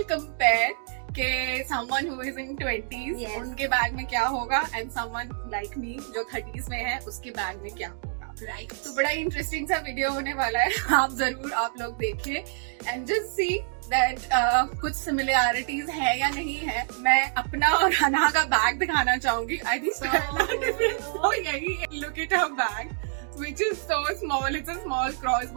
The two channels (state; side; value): silent; left; digital silence